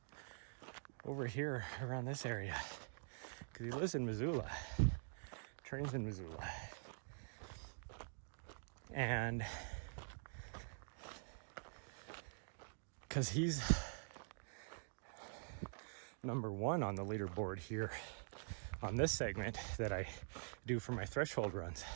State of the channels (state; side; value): silent; left; digital silence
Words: over here around this area? Because he lives in Missoula, trains in Missoula. And because he's number one on the leaderboard here on this segment that I do for my threshold runs